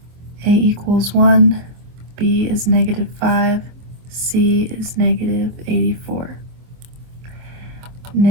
a equals 1, b is -5, c is -84.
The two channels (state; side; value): late; left; 24 ms